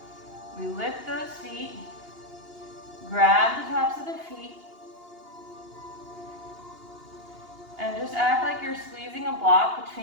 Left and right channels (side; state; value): left; late; 2.8 ms